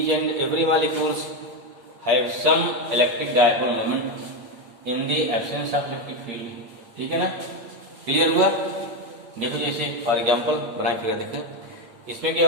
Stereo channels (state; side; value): late; left; 8.6 ms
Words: and every molecules have some electric dipole moment in the absence of electric field. ठीक है ना, क्लियर हुआ। देखो जैसे फॉर एग्जांपल बनाए फिगर, देखिए इसमें